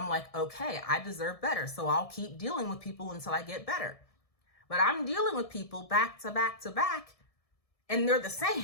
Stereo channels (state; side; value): late; right; 1.6 ms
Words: like, okay, I deserve better. So I'll keep dealing with people until I get better. But I'm dealing with people back to back to back, and they're the